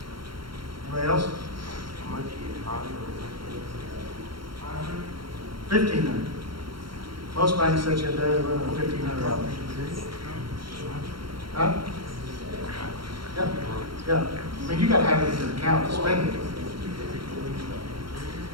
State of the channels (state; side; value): late; left; 0.73 ms